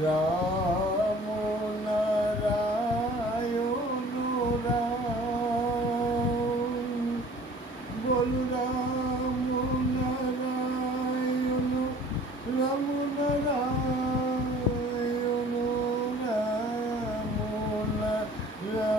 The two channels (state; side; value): normal; both; correlation 0.49